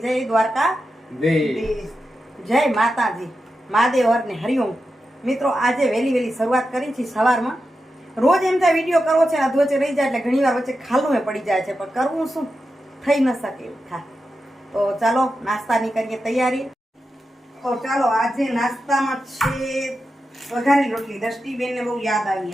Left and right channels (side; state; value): both; normal; correlation 0.90